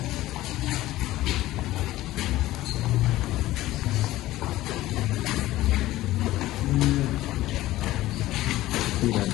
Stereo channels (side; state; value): right; quieter; 16.2 dB